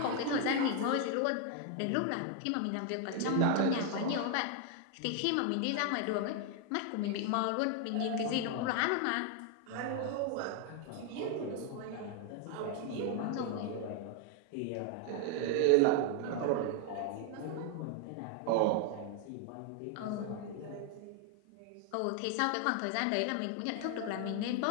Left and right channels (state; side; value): different; both; correlation 0.00